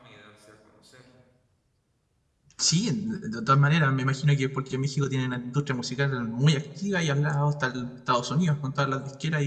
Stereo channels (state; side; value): identical; both; correlation 1.00